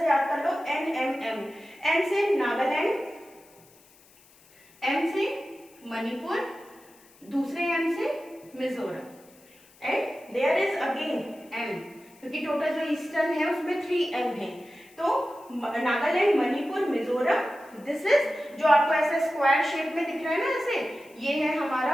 याद कर लो, एन एम एम। एन से नागालैंड, एम से मणिपुर, दूसरे एम से Mizoram, and there is again M, क्योंकि टोटल जो ईस्टर्न है उसमें 3 एम है। तो नागालैंड, मणिपुर, मिजोरम, दिस इज जो आपको ऐसे स्क्वायर शेप में दिख रहा है ना ऐसे, ये है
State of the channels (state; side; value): noise; left; hiss, 27 dB below the sound